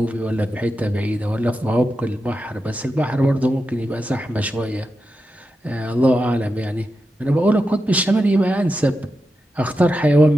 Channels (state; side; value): normal; both; correlation 0.89